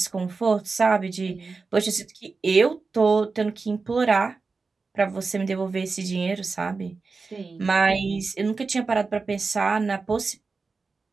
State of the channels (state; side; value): quieter; left; 4.3 dB